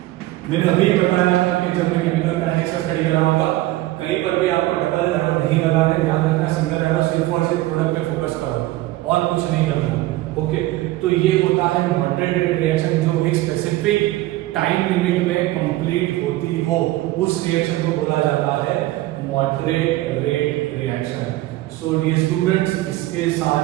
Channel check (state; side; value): quieter; left; 17.2 dB